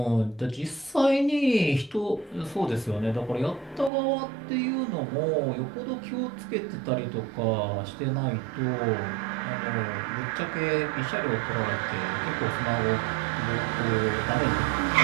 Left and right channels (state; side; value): drops out; left; at 3.9 s